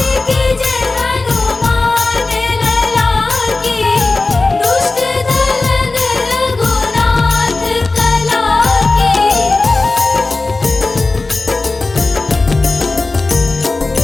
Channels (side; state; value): right; quieter; 3.4 dB